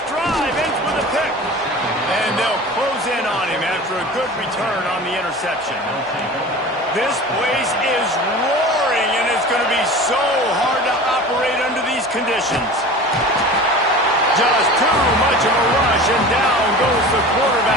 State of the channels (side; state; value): both; normal; correlation 0.37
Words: drive ends with a pick. And they'll close in on him after a good return on the interception. This place is roaring, and it's going to be so hard to operate under these conditions. Just too much of a rush, and down goes the